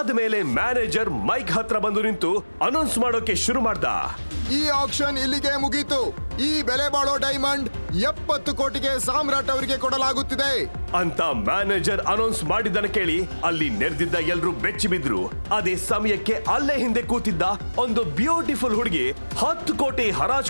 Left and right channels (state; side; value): inverted; both; correlation -1.00